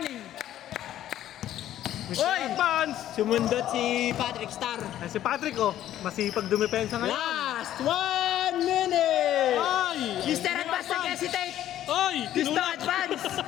Mr. Oy! Advance! Sumundot si Patrick Star. Ay, si Patrick oh, masipag dumepensa ngayon. Last 1 minute. Oy! Mr. Advance nag-hesitate. Oy! Gusto Tinulak! advance.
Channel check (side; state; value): right; quieter; 12.3 dB